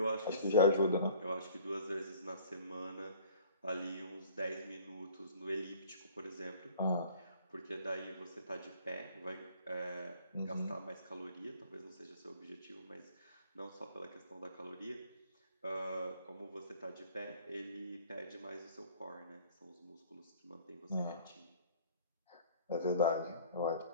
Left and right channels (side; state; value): both; inverted; correlation -0.51